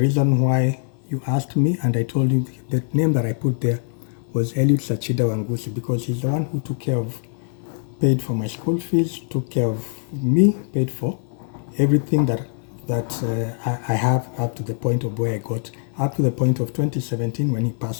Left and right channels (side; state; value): right; silent; 60 dB below the other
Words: why you asked me, and I told you the name that I put there was Eliud Sachida Wangusi, because he's the one who paid for my school fees, took care of me, paid for everything that I have up to the point of where I got, up to the point of 2017 when he